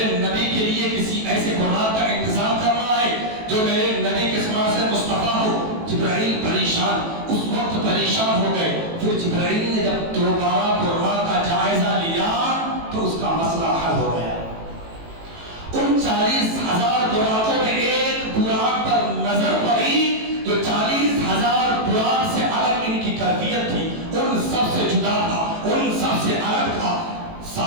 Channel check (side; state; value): left; late; 18 ms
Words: نبی کے لیے کسی ایسے براق کا انتظام کرنا ہے جو میرے نبی کے سما سے مصطفیٰ ہو۔ جبرائیل پریشان، اس وقت پریشان ہو گئے۔ پھر جبرائیل نے جب دوبارہ براق کا جائزہ لیا تو اس کا مسئلہ حل ہو گیا۔ ان 40,000 براقوں میں ایک براق پر نظر پڑی جو 40,000 براق سے الگ ان کی کیفیت تھی، ان سب سے جدا تھا، ان سب سے الگ تھا۔